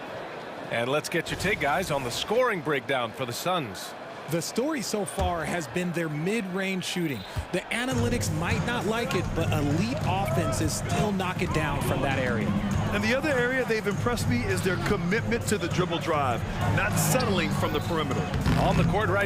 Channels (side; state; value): both; identical; correlation 1.00